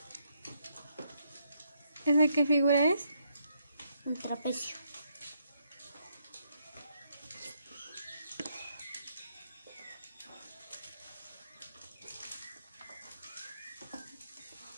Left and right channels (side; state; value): both; inverted; correlation -0.76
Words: ¿Esa qué figura es? Un trapecio.